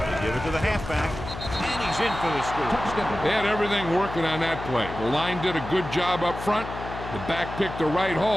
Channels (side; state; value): left; noise; hum, 9 dB below the sound